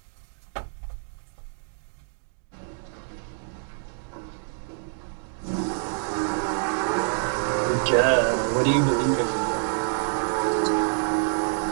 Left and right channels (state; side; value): silent; left; digital silence